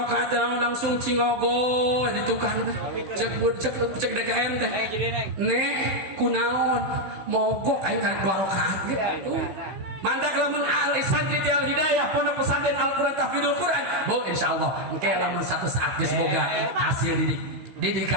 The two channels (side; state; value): left; late; 16 ms